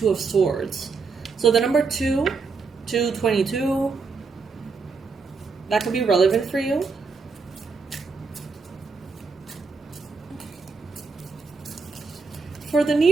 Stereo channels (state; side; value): quieter; left; 4.6 dB